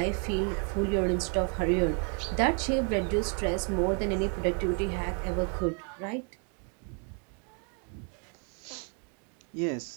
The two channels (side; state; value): left; quieter; 39.9 dB